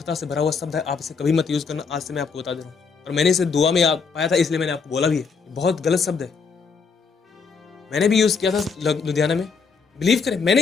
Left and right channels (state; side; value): quieter; right; 5.3 dB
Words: से भरा हुआ शब्द है, आप इसे कभी मत यूज करना। आज से मैं आपको बता दे रहा हूँ, और मैंने इसे दुआ में पाया था, इसलिए मैंने आपको बोला भी है। बहुत गलत शब्द है, मैंने भी यूज किया था लुधियाना में। बिलीव करें, मैंने